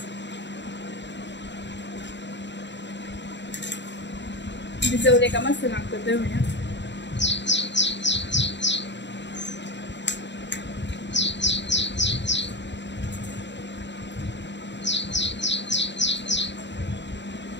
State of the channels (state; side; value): late; right; 0.52 ms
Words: भिजवले का मस्त लागतं दहीवड्या.